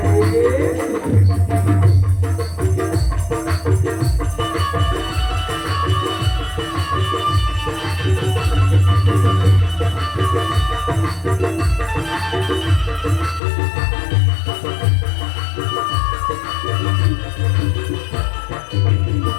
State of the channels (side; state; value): right; drops out; at 13.4 s